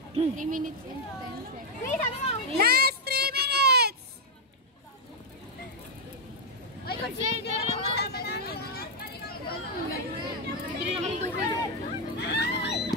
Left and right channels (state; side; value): normal; both; correlation -0.01